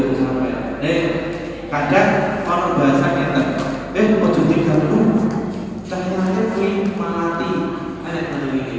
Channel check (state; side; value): identical; both; correlation 1.00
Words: sampai. Kadang orang bahasanya ojo diganggu. Cahayanya kuwi malati. Ana ngono iki.